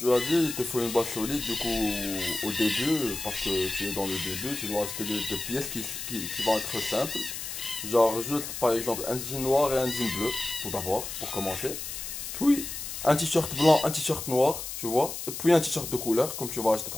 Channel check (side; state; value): left; noise; hiss, 7 dB below the sound